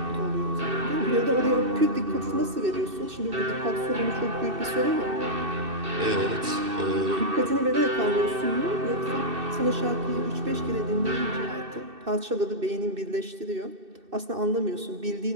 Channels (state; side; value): late; left; 2.6 ms